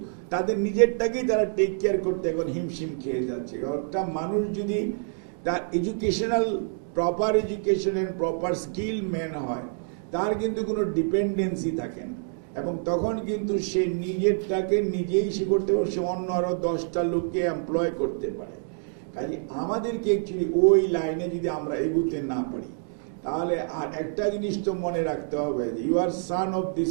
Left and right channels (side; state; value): left; silent; digital silence